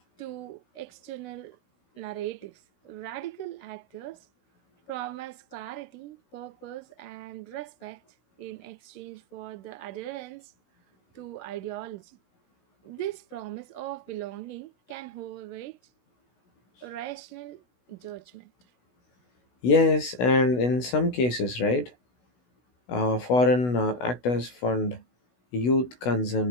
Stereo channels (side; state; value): right; late; 16 ms